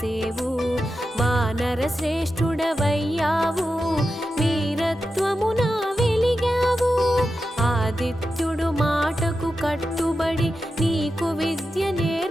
వానర శ్రేష్ఠుడవయ్యావు వీరత్వమున వెలిగావు ఆదిత్యుడు మాటకు కట్టుబడి నీకు విద్య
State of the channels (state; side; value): normal; both; correlation 0.90